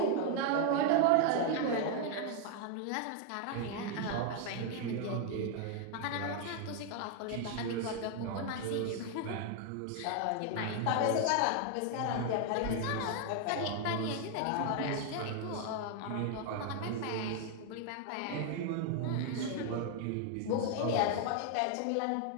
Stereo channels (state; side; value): different; both; correlation 0.00